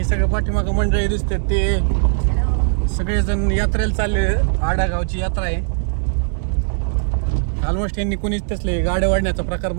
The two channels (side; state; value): left; silent; digital silence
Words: सगळं पाठीमागं मंडळी दिसते ते सगळेजण यात्रेला चालले. आडागावची यात्रा आहे. ऑलमोस्ट यांनी कोणीच तसले गाड्या वाढण्याचा प्रकार